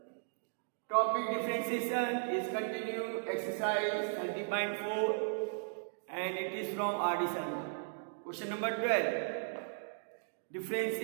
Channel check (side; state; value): left; silent; digital silence